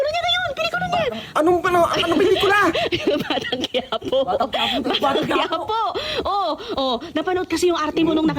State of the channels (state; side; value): identical; both; correlation 1.00